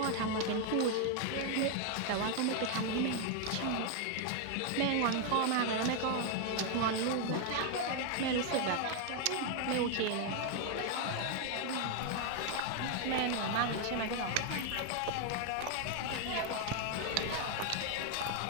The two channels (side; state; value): both; different; correlation 0.01